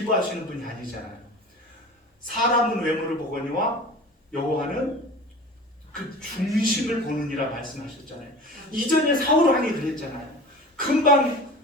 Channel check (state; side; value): normal; both; correlation 0.37